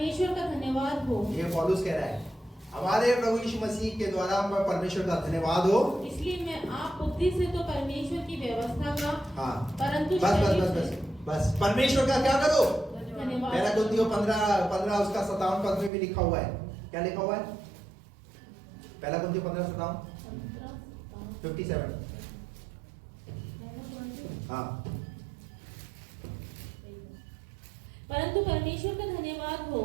का धन्यवाद हो। ये पौलुस कह रहा है, हमारे प्रभु यीशु मसीह के द्वारा परमेश्वर का धन्यवाद हो। इसलिए मैं आप बुद्धि से तो परमेश्वर की व्यवस्था का, हाँ, परंतु बस परमेश्वर का क्या करो? धन्यवाद। पहला कुरिन्थियों 15 उसका 57 पद में भी लिखा हुआ है। क्या लिखा हुआ है? पहला कुरिन्थियों 15:57 57। हाँ, परंतु परमेश्वर का धन्यवाद हो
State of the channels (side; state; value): left; drops out; at 15.9 s